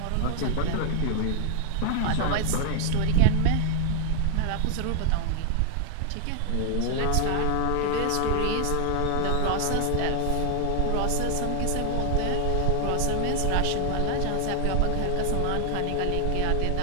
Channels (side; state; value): both; different; correlation 0.00